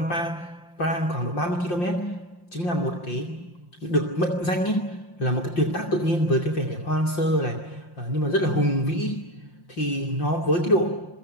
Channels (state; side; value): late; right; 5.7 ms